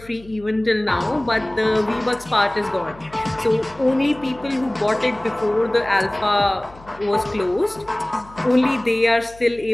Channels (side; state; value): left; noise; hum, 22 dB below the sound